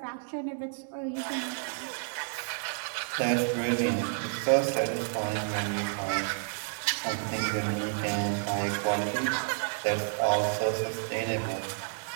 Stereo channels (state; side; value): silent; left; digital silence